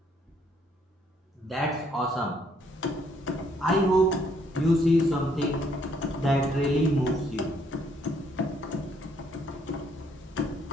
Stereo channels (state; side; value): normal; both; correlation 0.68